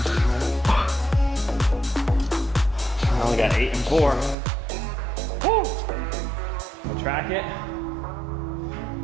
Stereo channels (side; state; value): left; drops out; at 4.4 s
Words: I only got 8 and 4. Woo! We'll track it.